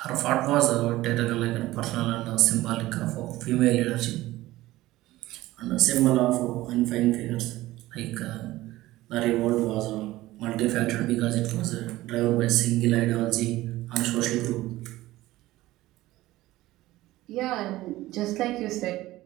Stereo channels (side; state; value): left; quieter; 17.1 dB